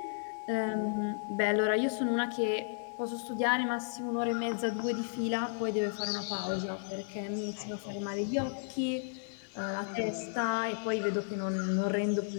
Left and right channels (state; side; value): silent; right; digital silence